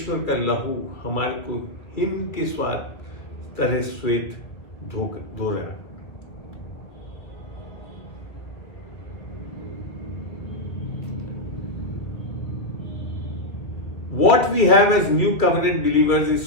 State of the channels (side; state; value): right; late; 2.0 ms